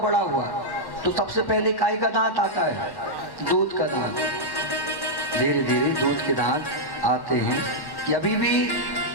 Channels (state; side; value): late; right; 1.1 ms